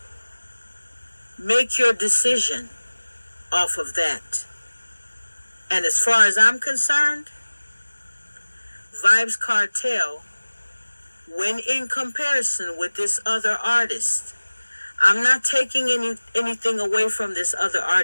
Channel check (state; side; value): inverted; both; correlation -1.00